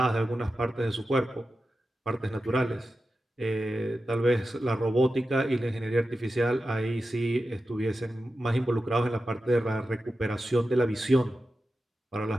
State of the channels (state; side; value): normal; both; correlation 0.92